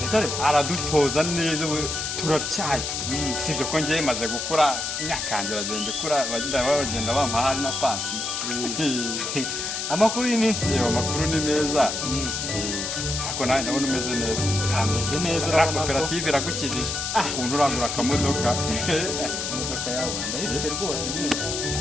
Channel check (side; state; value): left; noise; hiss, 3 dB below the sound